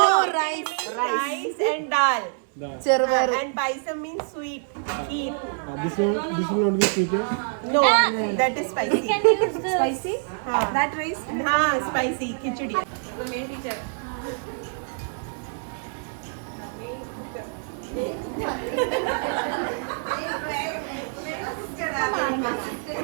rice. Rice and dal. Chervaru. And paisam means sweet. Kheer. This will not be sweet. No, that is spicy. Spicy? That rice? Spicy khichdi. The main teacher.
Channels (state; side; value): silent; left; 61 dB below the other